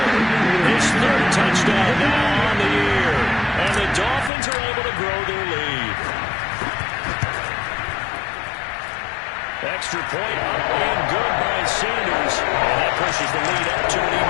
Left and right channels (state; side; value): drops out; right; at 4.3 s